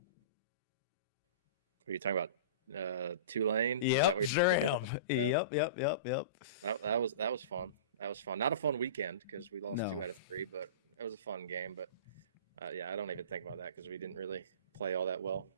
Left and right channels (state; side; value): inverted; both; correlation -0.34